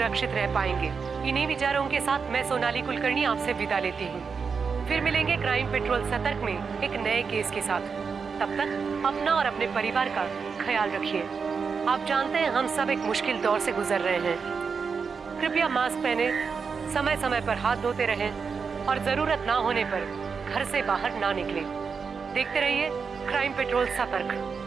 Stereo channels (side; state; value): left; quieter; 5.6 dB